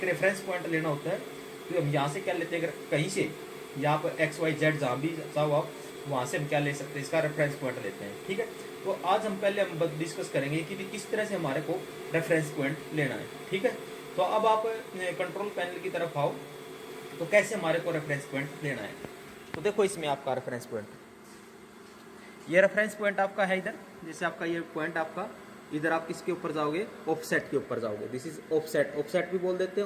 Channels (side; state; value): both; identical; correlation 1.00